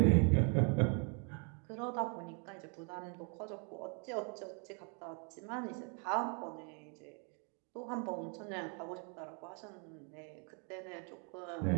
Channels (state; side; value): quieter; left; 37.9 dB